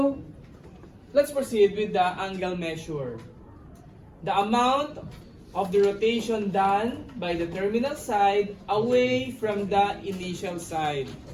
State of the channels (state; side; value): identical; both; correlation 1.00